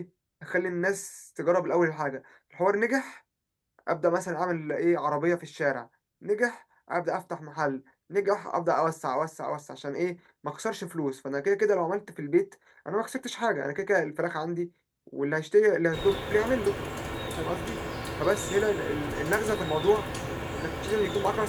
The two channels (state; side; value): identical; both; correlation 1.00